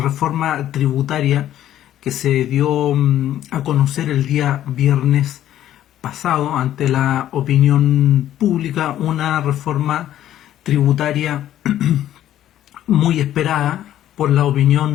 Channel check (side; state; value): right; quieter; 12.1 dB